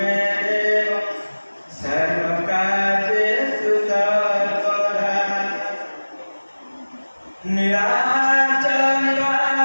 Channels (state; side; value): inverted; both; correlation -1.00